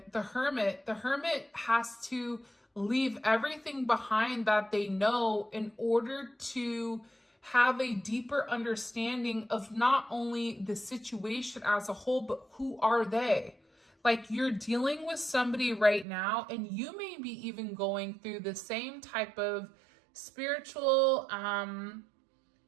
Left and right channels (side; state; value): left; drops out; at 16.1 s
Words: the Hermit has to leave everything behind that they know in order to have a deeper understanding of not only the situation as a whole, but who are they? Like, you're dealing with somebody right now, and you may be even going through the same type of spiritual